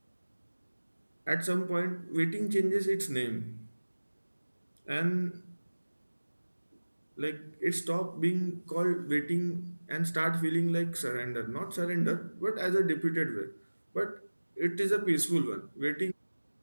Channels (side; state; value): both; inverted; correlation -1.00